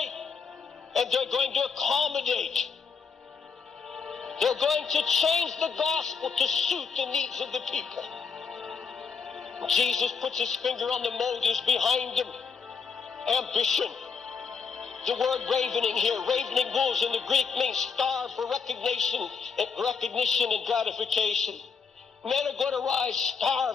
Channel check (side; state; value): right; quieter; 5.7 dB